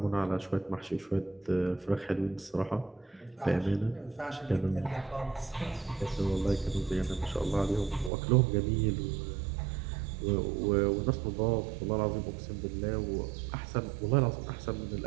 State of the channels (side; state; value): left; drops out; at 8.1 s